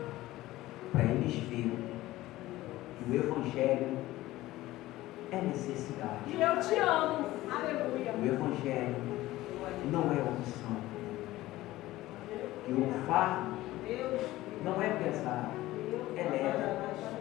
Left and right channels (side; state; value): right; quieter; 16.8 dB